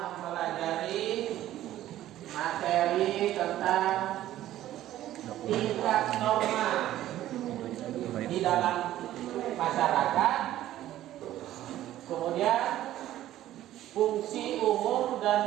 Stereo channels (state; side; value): quieter; left; 13.5 dB